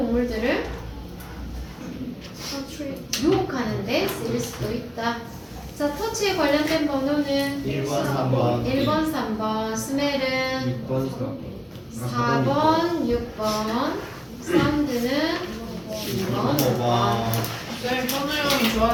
유혹하는데 쓰일 수도 있다. 자, 터치에 관련된 번호는 1번, 3번. 1번, 3번, 스멜은 6번, 4번, 6번, 사운드는 2번, 5번. 쌤 현우 형이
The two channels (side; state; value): both; identical; correlation 1.00